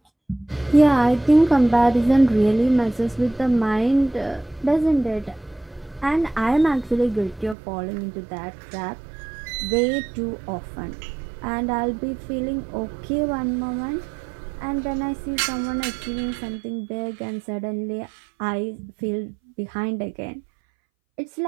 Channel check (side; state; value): left; drops out; at 7.6 s